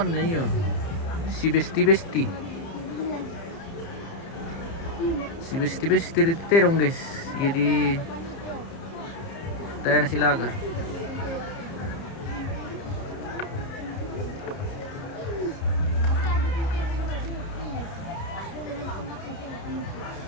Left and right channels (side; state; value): right; late; 30 ms